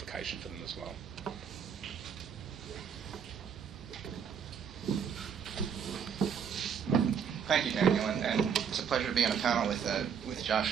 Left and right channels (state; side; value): quieter; left; 7.3 dB